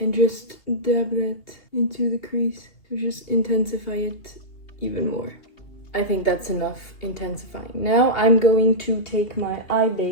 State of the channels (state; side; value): late; right; 2.6 ms